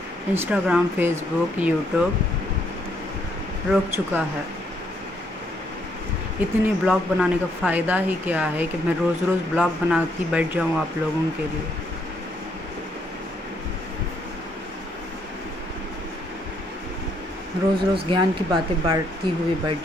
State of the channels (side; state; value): both; normal; correlation 0.72